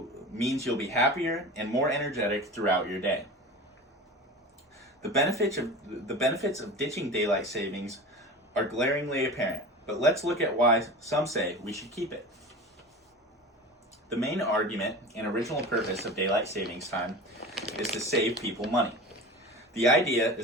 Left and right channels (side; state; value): both; normal; correlation 0.33